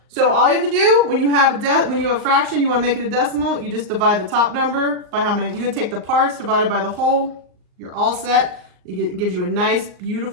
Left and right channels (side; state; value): left; late; 39 ms